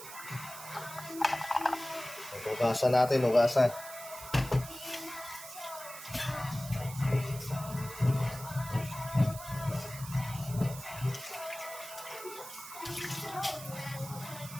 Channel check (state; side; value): noise; right; hiss, 13 dB below the sound